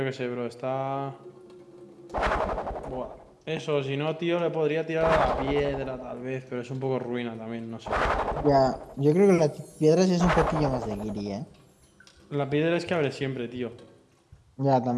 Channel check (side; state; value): both; identical; correlation 1.00